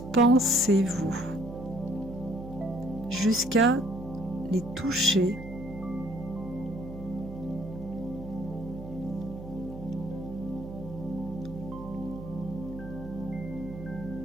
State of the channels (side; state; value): right; noise; hum, 12 dB below the sound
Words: jusqu'à les toucher.